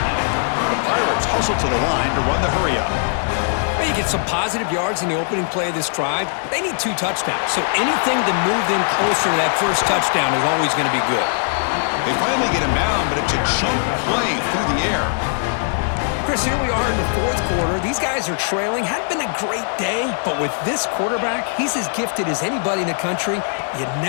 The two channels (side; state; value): right; silent; digital silence